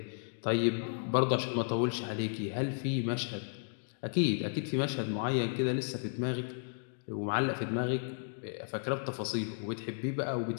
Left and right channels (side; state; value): right; silent; digital silence